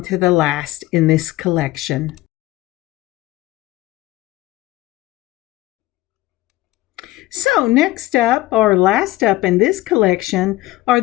to the last in this collection. So next up, or last up in this collection, are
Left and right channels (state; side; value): quieter; right; 17.8 dB